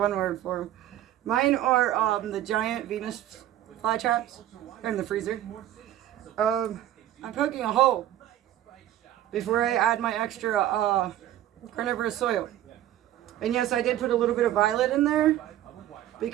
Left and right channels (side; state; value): left; quieter; 12.7 dB